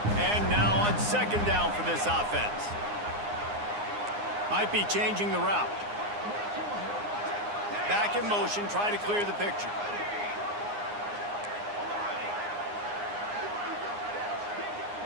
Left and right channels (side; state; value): left; late; 9.7 ms